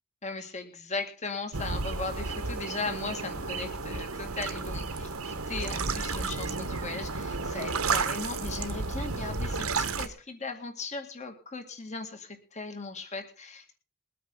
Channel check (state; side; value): normal; both; correlation 0.20